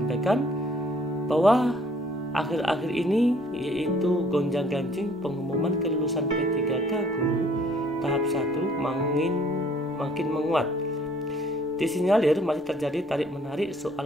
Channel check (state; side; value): normal; both; correlation 0.59